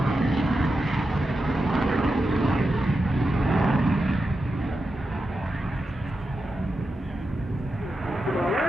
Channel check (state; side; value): normal; both; correlation 0.89